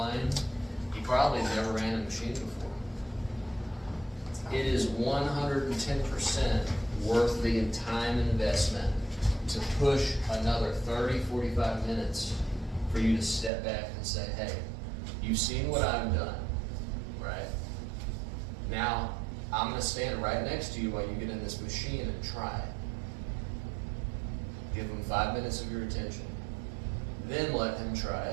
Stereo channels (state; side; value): drops out; left; at 13.5 s